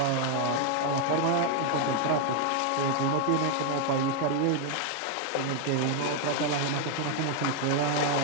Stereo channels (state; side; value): different; both; correlation 0.00